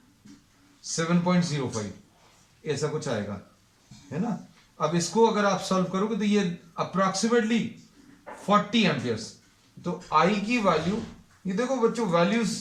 7.05 ऐसा कुछ आएगा, है ना। अब इसको अगर आप सॉल्व करोगे तो ये अप्रोक्सीमेटली 40 एम्पियर्स। तो I की वैल्यू, ये देखो बच्चों वैल्यूज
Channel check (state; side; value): identical; both; correlation 1.00